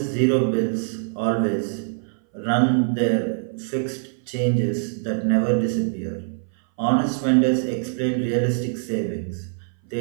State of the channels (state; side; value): silent; left; 59 dB below the other